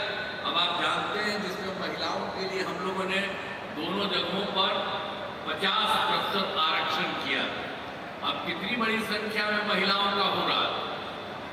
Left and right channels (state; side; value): identical; both; correlation 1.00